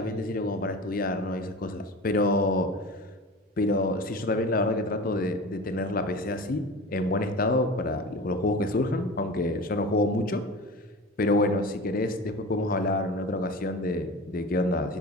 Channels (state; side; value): normal; both; correlation 0.33